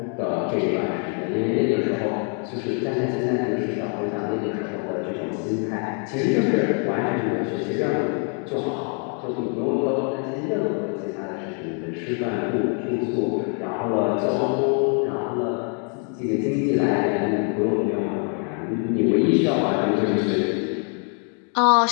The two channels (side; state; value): right; quieter; 39.7 dB